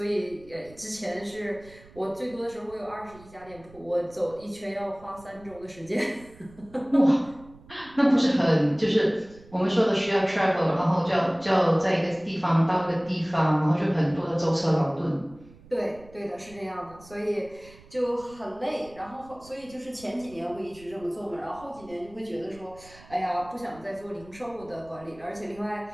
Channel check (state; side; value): noise; right; rumble, 22 dB below the sound